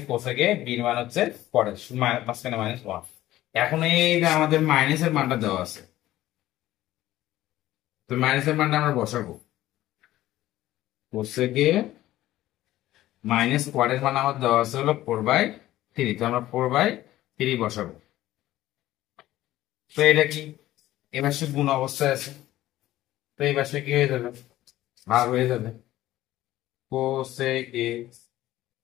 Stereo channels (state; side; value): quieter; right; 15.0 dB